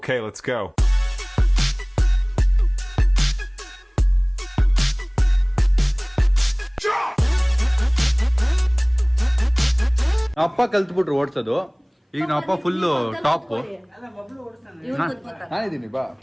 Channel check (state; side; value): identical; both; correlation 1.00